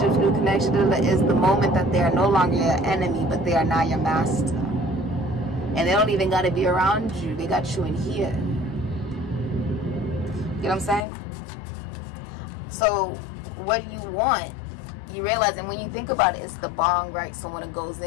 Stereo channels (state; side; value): drops out; right; at 11.1 s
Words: new connections. Is the moment that they are no longer your enemy, but they are now your master. And they don't even got to be around you. They got you in here. You know what I'm saying? So what you want, you realize, and when you think about it, it's the bong, right? So when it goes